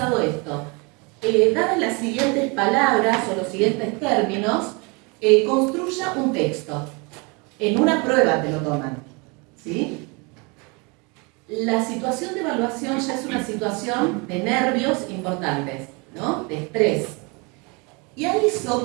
esto. Dadas las siguientes palabras o los siguientes términos, construya un texto. En una prueba te lo toman, ¿sí? La situación de evaluación ya es una situación de nervios importantes, ¿no?, de estrés. Y a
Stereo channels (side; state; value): left; quieter; 29.9 dB